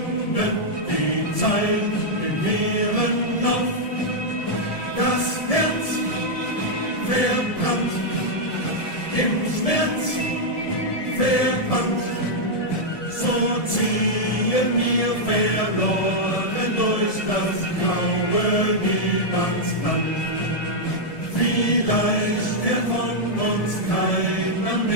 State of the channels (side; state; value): right; late; 1.7 ms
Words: die Zeit im leeren Lauf. Das Herz verbrannt, im Schmerz verbannt, so ziehen wir verloren durch das graue Niemandsland. Vielleicht kehrt von uns keiner